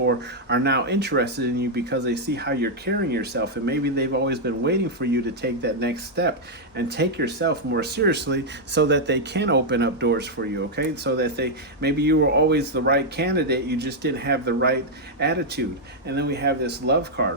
are now interested in you because they see how you're carrying yourself, and maybe they've always been waiting for you to take that next step and take yourself more seriously so that they can open up doors for you, okay? So that maybe you were always the right candidate, you just didn't have the right attitude. And then we have this love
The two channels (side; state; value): both; normal; correlation -0.03